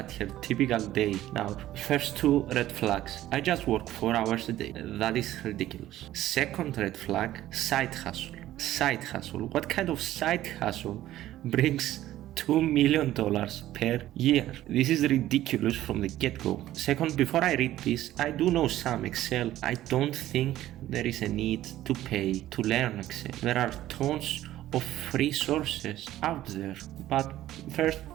her typical day. Now, first 2 red flags. I just work 4 hours a day. That is ridiculous. Second red flag, side hustle. Side hustle. What kind of side hustle brings $2 million per year? This is ridiculous from the get-go. Second, before I read this, I do know some Excel. I don't think there is a need to pay to learn Excel. There are tons of free sources out there. But first,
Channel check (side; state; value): left; quieter; 14.1 dB